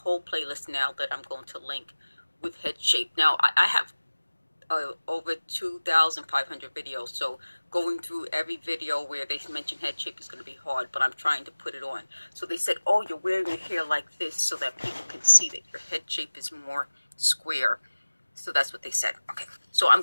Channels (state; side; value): inverted; both; correlation -1.00